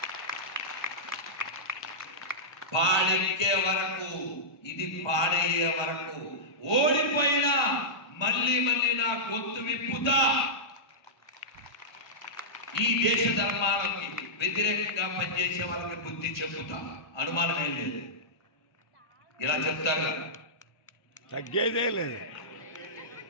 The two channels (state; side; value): late; right; 1.2 ms